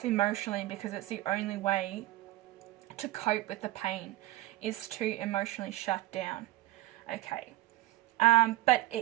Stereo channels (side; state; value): left; quieter; 17.0 dB